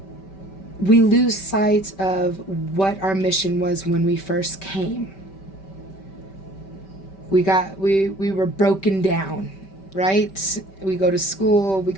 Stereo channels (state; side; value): late; right; 5.2 ms